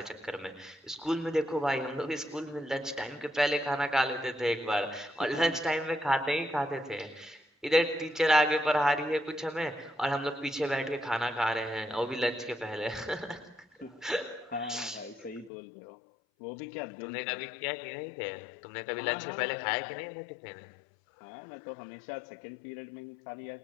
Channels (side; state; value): right; drops out; at 15.5 s